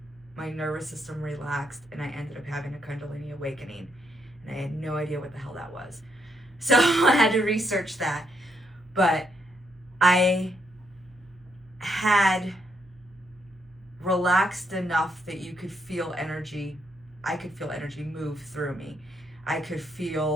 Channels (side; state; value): right; noise; hum, 28 dB below the sound